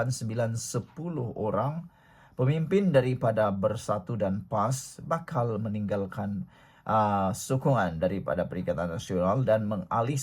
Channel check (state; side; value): identical; both; correlation 1.00